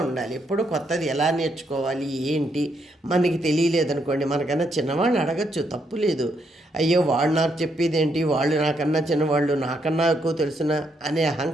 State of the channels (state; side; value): normal; both; correlation 0.76